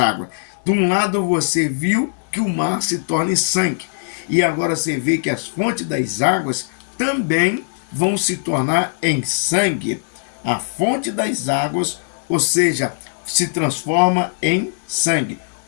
De um lado você viu que o mar se torna em sangue, e agora você vê que as fontes das águas também vão se tornar em sangue. A fonte das águas, ou seja, se transforma em sangue.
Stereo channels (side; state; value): right; silent; 58 dB below the other